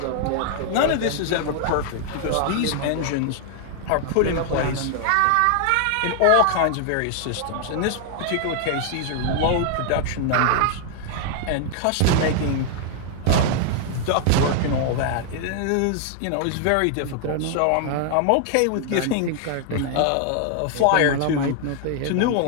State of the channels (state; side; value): different; both; correlation 0.00